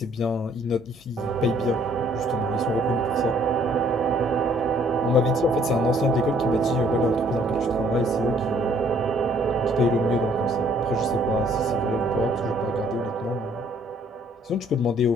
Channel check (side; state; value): both; normal; correlation 0.62